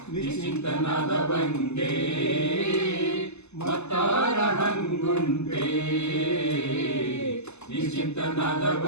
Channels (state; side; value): late; right; 0.81 ms